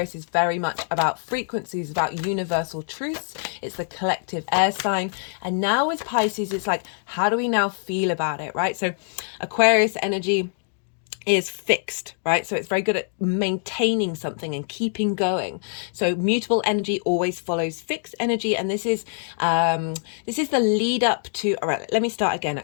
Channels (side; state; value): right; silent; digital silence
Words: is very much about frequencies, about universal truths. It's the collective air sign, and now with Pisces it's like, how do we now feel about it, right? So Aquarius energy is fixed, right? So it's very good at maintaining something and keeping going. So mutable energy always follows fixed energy, and this is the lead up to, all right, let me start again